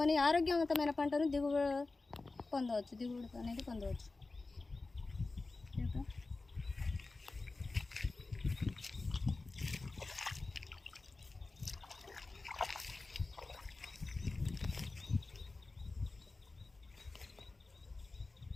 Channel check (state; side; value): quieter; right; 3.5 dB